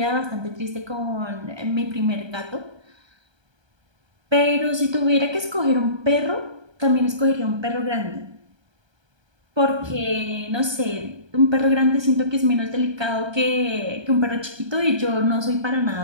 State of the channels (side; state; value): left; late; 1.3 ms